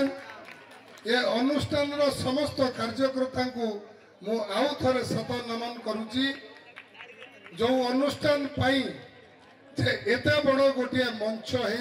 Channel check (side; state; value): both; identical; correlation 1.00